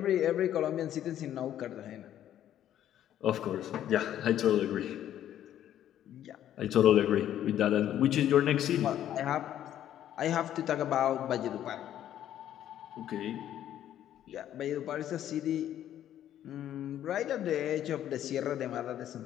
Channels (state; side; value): quieter; right; 11.3 dB